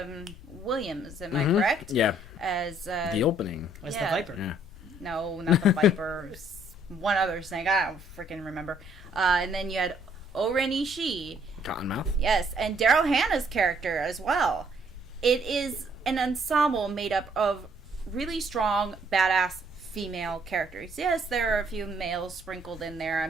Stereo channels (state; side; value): noise; left; rumble, 17 dB below the sound